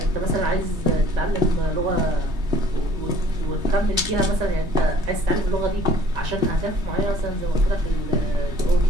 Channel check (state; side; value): late; left; 3.2 ms